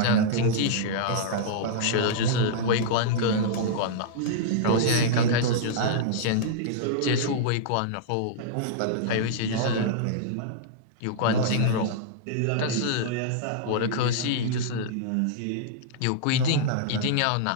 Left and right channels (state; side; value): different; both; correlation -0.02